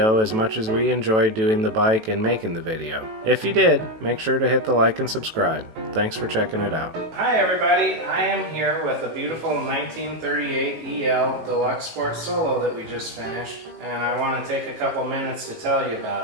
as much as we enjoyed doing the bike and making the video. If you did, make sure to hit the like and subscribe. Thanks for checking it out. Hi everybody, I am here with a beautiful 1938 EL Deluxe Sport Solo that we just finished, and I want to take a couple minutes to tell you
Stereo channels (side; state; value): left; late; 18 ms